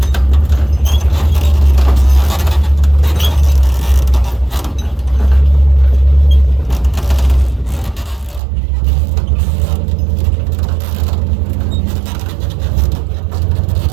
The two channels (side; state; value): left; drops out; at 8.4 s